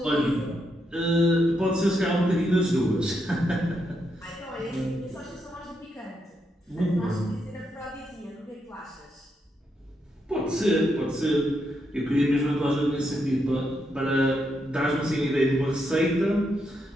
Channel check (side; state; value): both; normal; correlation 0.81